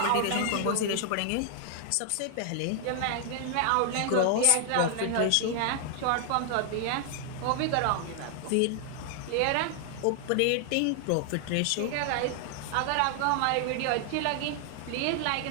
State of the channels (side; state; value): both; different; correlation 0.00